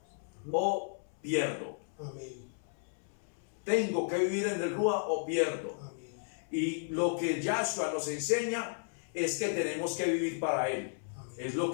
o pierdo. Amén. Tengo que vivir en el Ruach o pierdo. Amén. Y lo que Yahshua nos enseña es que tenemos que vivir para Él. Amén. Es lo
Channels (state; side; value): silent; right; 55 dB below the other